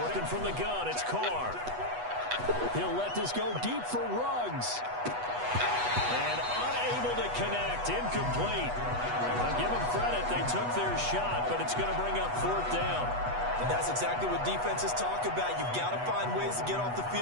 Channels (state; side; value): late; left; 8.2 ms